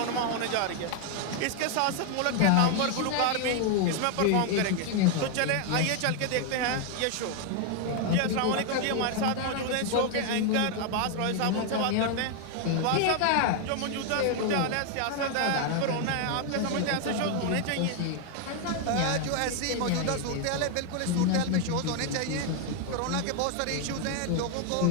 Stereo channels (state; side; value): different; both; correlation 0.01